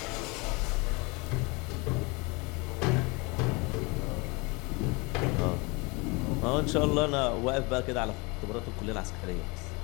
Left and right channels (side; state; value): right; quieter; 27.5 dB